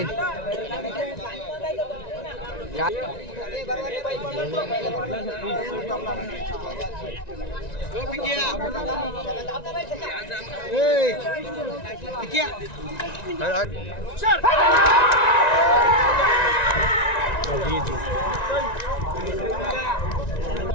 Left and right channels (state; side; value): late; right; 1.9 ms